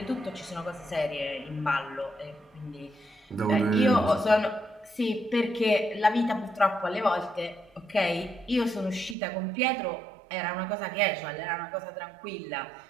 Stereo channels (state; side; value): drops out; left; at 9.2 s